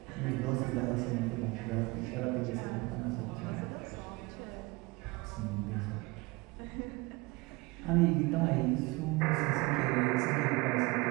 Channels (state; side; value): quieter; left; 24.3 dB